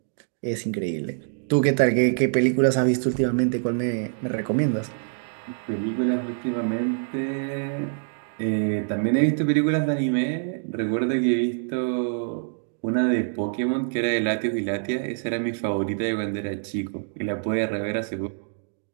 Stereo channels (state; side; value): silent; left; digital silence